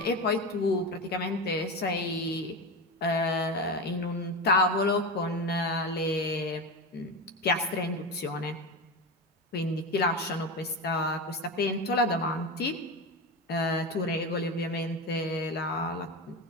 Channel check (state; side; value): normal; both; correlation 0.20